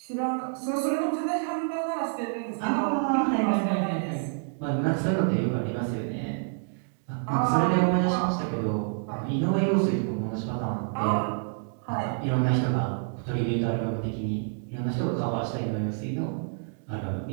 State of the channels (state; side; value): silent; left; digital silence